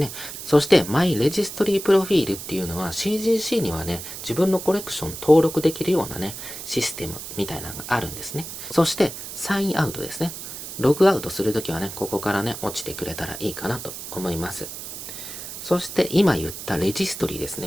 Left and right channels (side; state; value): right; noise; hiss, 9 dB below the sound